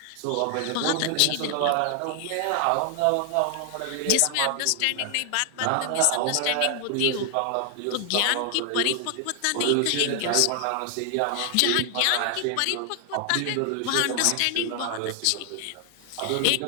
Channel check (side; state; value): both; different; correlation 0.00